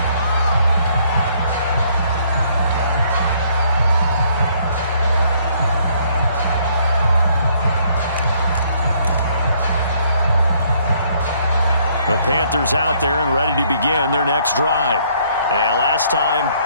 The Panthers out there and ready to begin their next drive. And last time,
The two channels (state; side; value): inverted; both; correlation -0.66